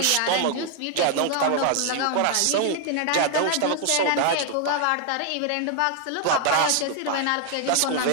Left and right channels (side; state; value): both; different; correlation 0.00